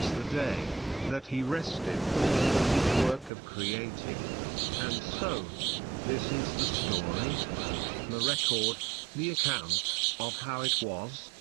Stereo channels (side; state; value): left; drops out; at 3.3 s